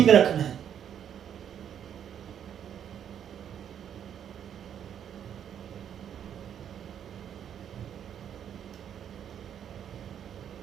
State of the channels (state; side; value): quieter; left; 9.1 dB